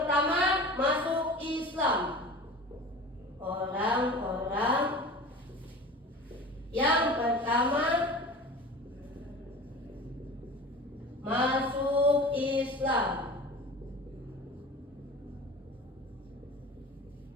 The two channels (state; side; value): normal; both; correlation 0.37